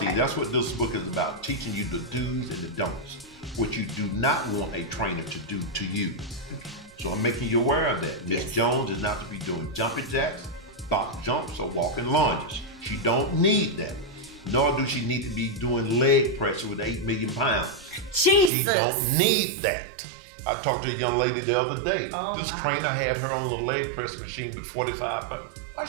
See, that's what this book is about, teaching you the do's and the don'ts, what you do not want a trainer to do to you. So I'm making you aware of that. Miss Jones is not to be doing jumping jacks, box jumps, or walking lunges. She don't need that. Nor do she need to be doing leg press with 8 million pounds. Jesus. She don't need that. I talked to a young lady the other day. This trainer had her on the leg press machine with 45 pounds. Why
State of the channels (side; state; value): left; drops out; at 18.5 s